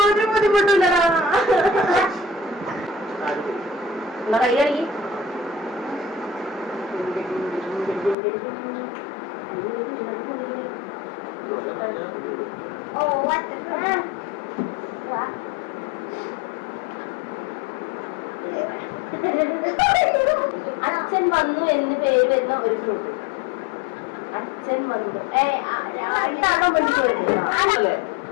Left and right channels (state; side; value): drops out; right; at 8.2 s